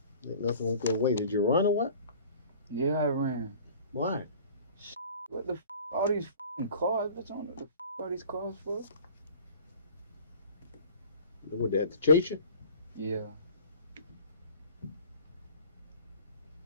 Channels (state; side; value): inverted; both; correlation -0.46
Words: Ain't nothing won't go away. Did you run or what? Yeah, I ran. Why? What the all these cars, bitch? I don't know what the all these cars for. What, they had to chase you? Yeah.